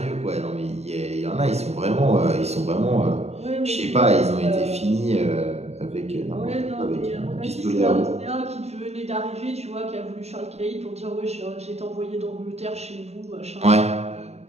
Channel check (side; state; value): left; late; 0.31 ms